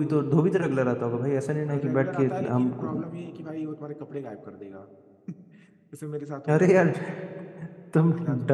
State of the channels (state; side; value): identical; both; correlation 1.00